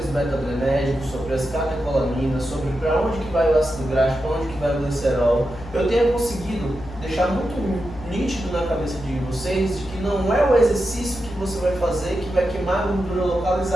beta-adrenérgicos, sobre as catecolaminas, sobre para onde que vai o ácido graxo, para onde que vai o glicerol, eu tenha conseguido deixar muito nítido na cabeça de vocês de que não é o exercício que você vai fazer que vai queimar a gordura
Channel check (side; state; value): left; noise; hum, 14 dB below the sound